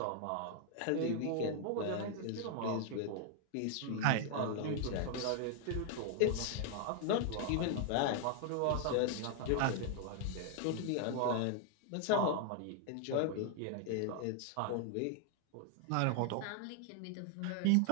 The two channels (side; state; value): both; different; correlation 0.00